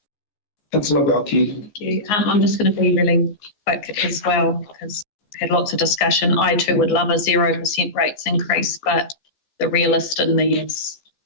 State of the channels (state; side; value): late; right; 14 ms